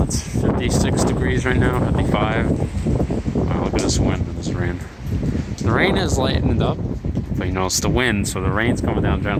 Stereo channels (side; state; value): both; identical; correlation 1.00